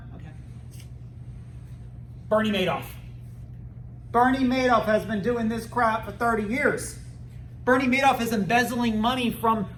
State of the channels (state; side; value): identical; both; correlation 1.00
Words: Okay. Bernie Madoff. Bernie Madoff has been doing this crap for 30 years. Bernie Madoff is embezzling money from